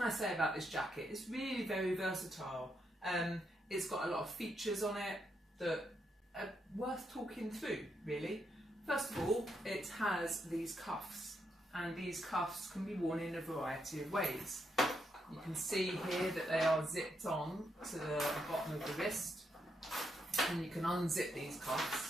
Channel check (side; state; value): both; normal; correlation 0.80